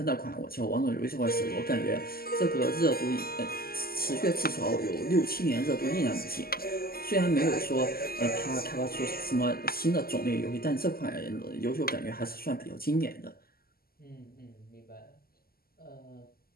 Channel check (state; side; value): late; right; 0.44 ms